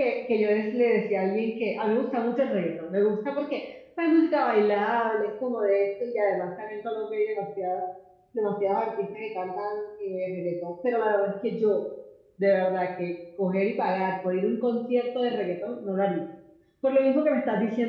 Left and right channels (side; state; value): both; identical; correlation 1.00